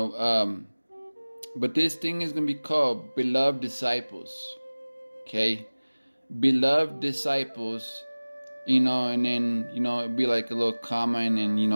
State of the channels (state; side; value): inverted; both; correlation -1.00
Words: but this thing is going to be called Beloved Disciples. Okay, Beloved Disciples. And then it'd be like a little comma, and then